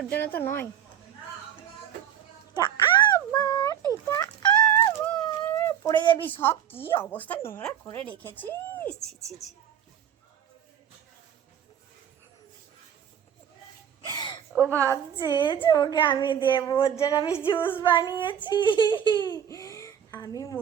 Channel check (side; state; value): left; quieter; 9.2 dB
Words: জন্য তো নয়, আবার এটা আবার পড়ে যাবি সব। কি অবস্থা নোংরা করে রেখেছিস, ছি ছি ছি। ও ভাবছে যে ওকে আমি দেবো, ওর জন্য আমি জুস বানিয়েছি। আমি